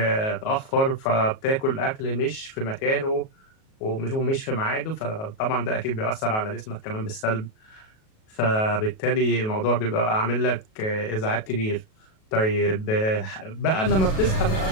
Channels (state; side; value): late; right; 37 ms